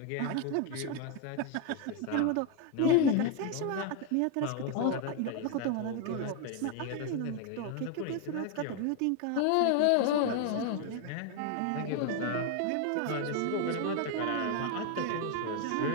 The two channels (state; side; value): different; both; correlation 0.01